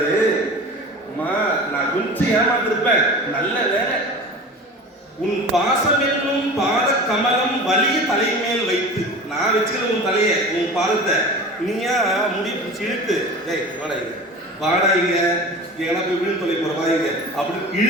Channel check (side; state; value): both; normal; correlation 0.36